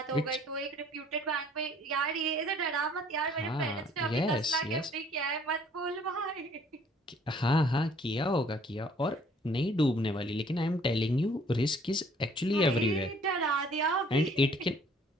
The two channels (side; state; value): both; normal; correlation 0.58